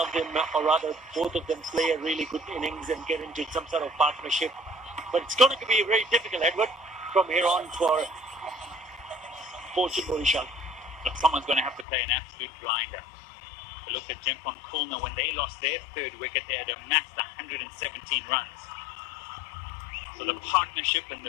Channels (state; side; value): drops out; right; at 11.9 s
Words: of them, or rather both of them, play a really good innings and get into some sort of partnership. But it's going to be very difficult, Edward, from here on for Barishal. Look, someone's going to have to play an absolute blinder. Look at Dhaka Khulna. When they lost their 3rd wicket, they had amassed 117 runs. So the partnership and